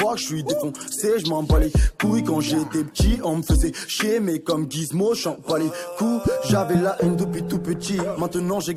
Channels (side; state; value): both; identical; correlation 1.00